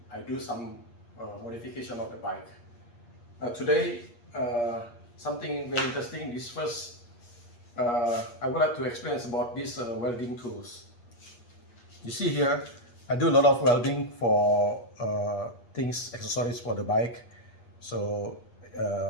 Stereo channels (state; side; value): late; right; 8.5 ms